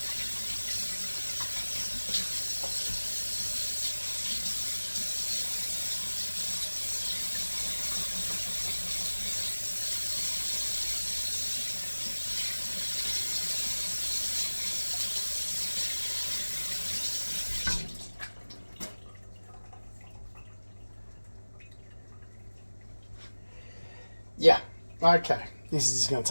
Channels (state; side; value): inverted; both; correlation -1.00